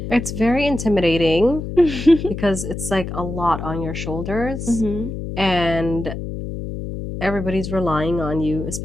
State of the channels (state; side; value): noise; left; hum, 7 dB below the sound